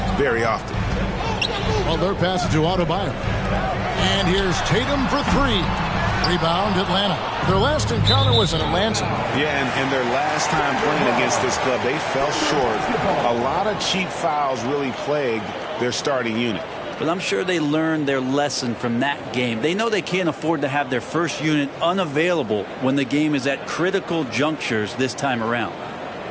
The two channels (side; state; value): both; identical; correlation 1.00